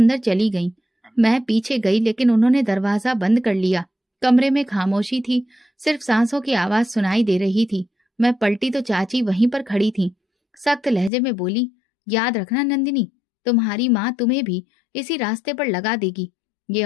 चली गई। मैं पीछे गई, लेकिन उन्होंने दरवाजा बंद कर लिया। कमरे में खामोशी थी, सिर्फ सांसों की आवाज सुनाई दे रही थी। मैं पलटी तो चाची वहीं पर खड़ी थी। सख्त लहजे में बोली, याद रखना नंदिनी, तुम्हारी माँ तुम्हें भी इसी रास्ते पर लगा देगी। ये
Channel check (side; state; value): right; drops out; at 11.1 s